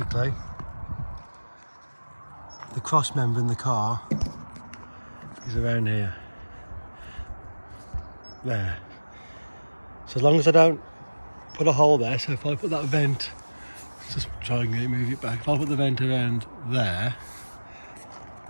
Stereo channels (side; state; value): both; inverted; correlation -1.00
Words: the cross member in the car is around here. There. So as long as I don't put a hole there, so if I put that vent try and move it back. If I put the vent around there,